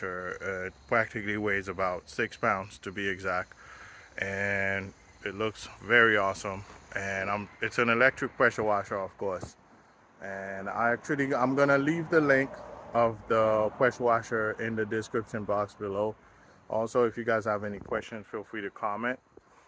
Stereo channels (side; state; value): both; identical; correlation 1.00